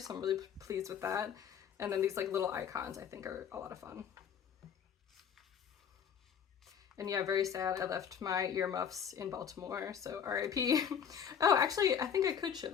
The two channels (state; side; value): quieter; right; 7.9 dB